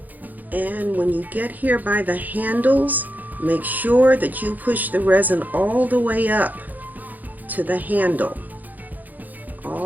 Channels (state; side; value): late; left; 0.083 ms